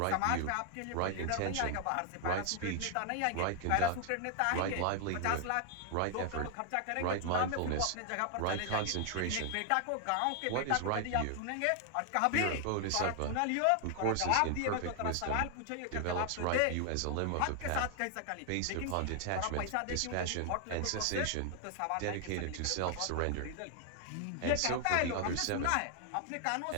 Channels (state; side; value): different; both; correlation 0.00